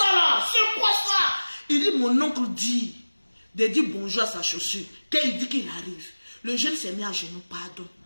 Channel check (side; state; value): both; inverted; correlation -1.00